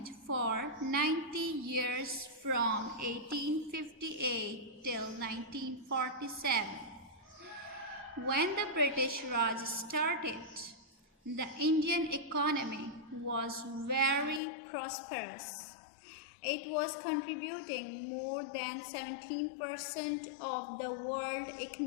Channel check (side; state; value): right; drops out; at 14.4 s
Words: for 90 years from 1858 till 1947. When the British Raj started, the Indian economy was very prosperous. It was contributing more than 17% of the world